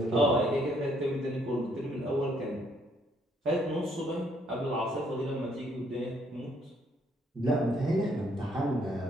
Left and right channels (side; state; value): both; normal; correlation 0.68